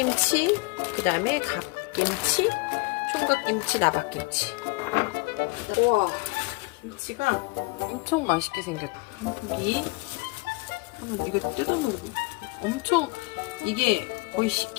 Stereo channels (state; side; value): quieter; right; 25.9 dB